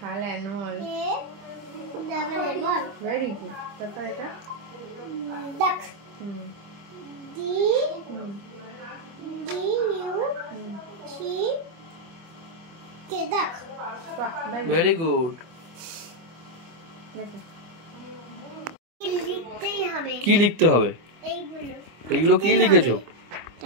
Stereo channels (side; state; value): left; late; 25 ms